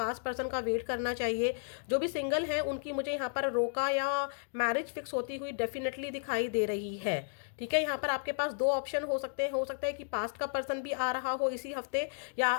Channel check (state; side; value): silent; right; digital silence